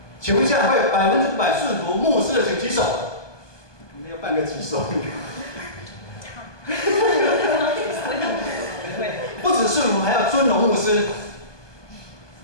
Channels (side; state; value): right; late; 1.2 ms